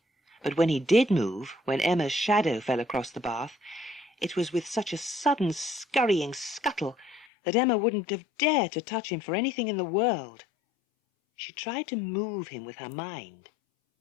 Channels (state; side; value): drops out; right; at 7.2 s